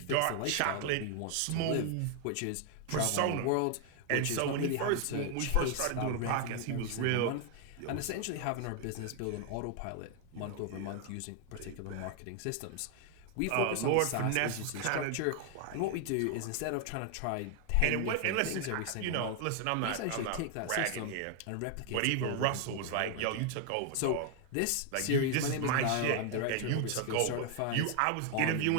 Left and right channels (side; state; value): both; different; correlation 0.00